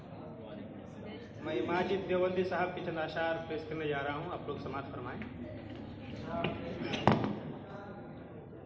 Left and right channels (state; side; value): identical; both; correlation 1.00